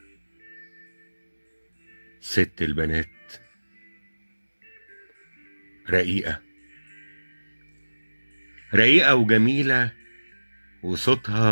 ست البنات، رقيقة رقيقة وجميلة،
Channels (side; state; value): both; inverted; correlation -1.00